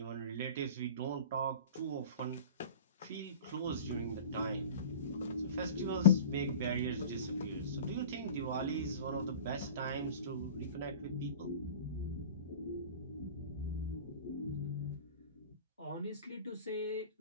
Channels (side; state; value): both; inverted; correlation -0.38